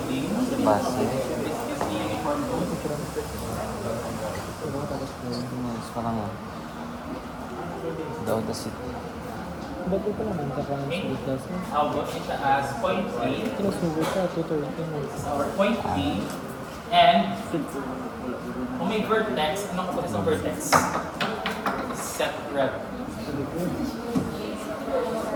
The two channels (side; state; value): both; identical; correlation 1.00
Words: Base. This is the uniform load. 16 minutes pa lang yan. Daw the city. Ba't ito naman sa kanya Okay, sa itas? I'll go siya as point A. Kinasubo siya, 230. This is our point B. And kung may vertex, anong kapag sa vertex? Set rep.